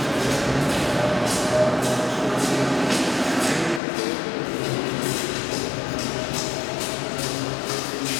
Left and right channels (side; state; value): right; drops out; at 3.8 s